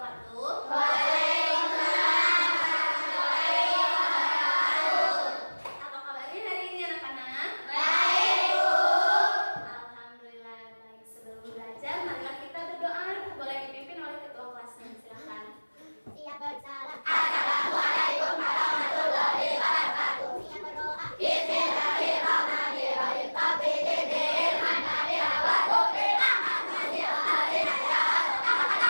Waalaikumsalam warahmatullahi wabarakatuh. Apa kabarnya hari ini anak-anak? Baik, Bu. Alhamdulillah baik. Sebelum belajar, marilah kita berdoa. Boleh dipimpin oleh ketua kelasnya. Silakan. Siap bersalam. Assalamualaikum warahmatullahi wabarakatuh. Siap berdoa. Bismillahirrahmanirrahim. Bismillahirrahmanirrahim.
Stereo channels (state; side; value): inverted; both; correlation -1.00